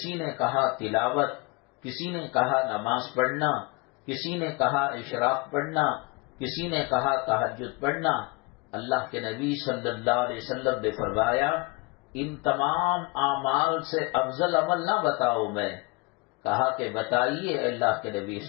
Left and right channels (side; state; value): right; quieter; 26.6 dB